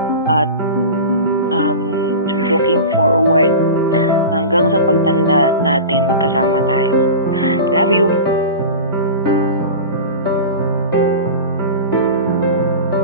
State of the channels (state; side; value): inverted; both; correlation -0.31